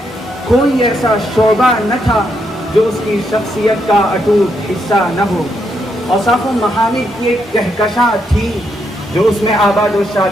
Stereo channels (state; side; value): normal; both; correlation 0.78